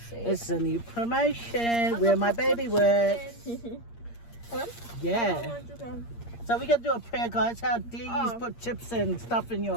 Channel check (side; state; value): right; late; 8.6 ms